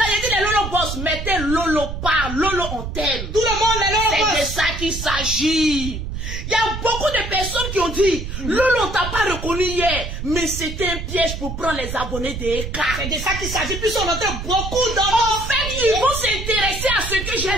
il dit les Lolo Boss, mettez Lolo par, Lolo on t'aime. Tout le monde est là. C'est de ça qu'il s'agit. Il y a beaucoup de personnes qui ont dit, Lolo, on t'a pas reconnu hier, mais c'était un piège pour prendre les abonnés des EK. C'est de ça qu'il s'agit, puis on entend beaucoup dans... En fait, ils vont s'intéresser à ce que j'ai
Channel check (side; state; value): right; noise; rumble, 6 dB below the sound